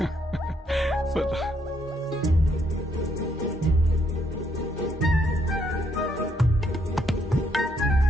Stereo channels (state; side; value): normal; both; correlation 0.73